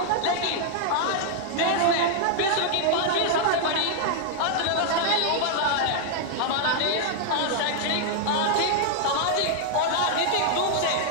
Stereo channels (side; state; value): both; different; correlation 0.00